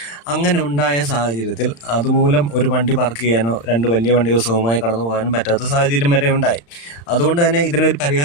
അങ്ങനെ ഉണ്ടായ സാഹചര്യത്തിൽ അതുമൂലം ഒരു വണ്ടി പാർക്ക് ചെയ്യാനോ 2 വലിയ വണ്ടികൾ സുഖമായി കടന്നു പോകാനും പറ്റാത്ത സാഹചര്യം വരെ ഉണ്ടായി. അതുകൊണ്ട് തന്നെ ഇതിനൊരു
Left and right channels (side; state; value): right; late; 35 ms